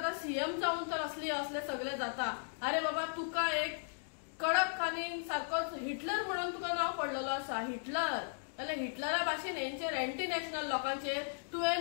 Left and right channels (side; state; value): right; silent; digital silence